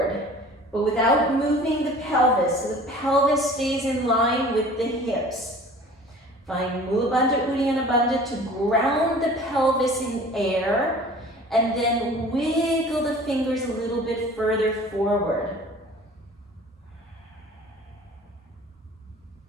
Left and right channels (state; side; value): normal; both; correlation 0.45